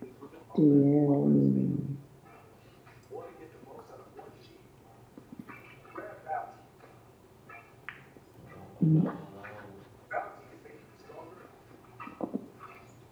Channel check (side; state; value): both; identical; correlation 1.00